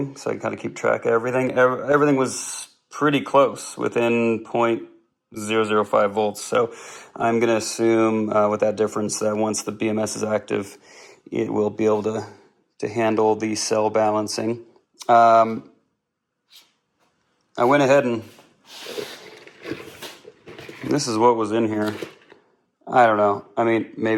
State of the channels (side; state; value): both; identical; correlation 1.00